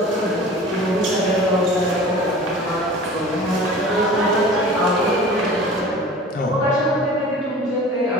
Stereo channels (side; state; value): both; normal; correlation 0.41